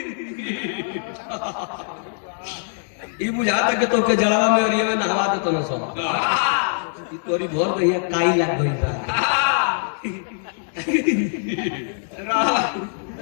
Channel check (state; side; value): silent; right; 64 dB below the other